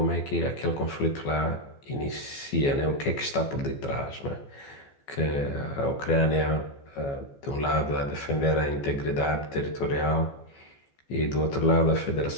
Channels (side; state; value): right; late; 14 ms